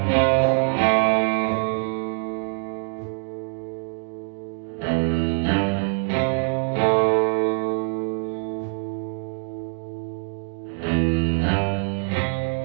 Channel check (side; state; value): left; quieter; 39.9 dB